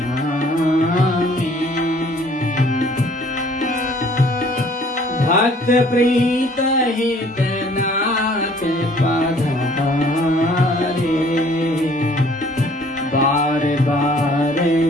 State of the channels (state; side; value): normal; both; correlation 0.56